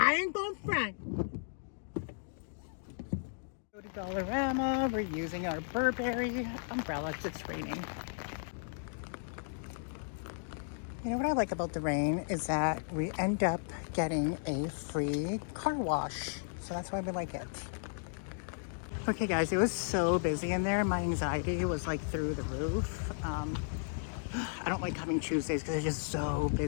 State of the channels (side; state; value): right; silent; digital silence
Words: ain't going front. Go to Dollarama. We're using our Burberry umbrella because it's raining. You know what I like about the rain is that we end up getting a free car wash. So that's why we like it. Okay, guys, it was so busy in there. My anxiety was like through the roof. I don't like coming Tuesdays because it's just so